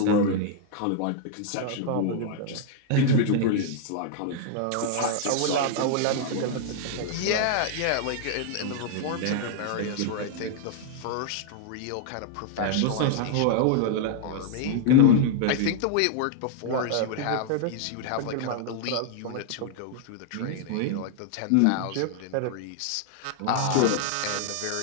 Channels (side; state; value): both; different; correlation -0.01